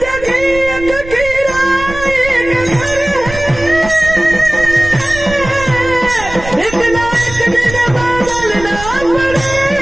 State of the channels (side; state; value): right; noise; rumble, 12 dB below the sound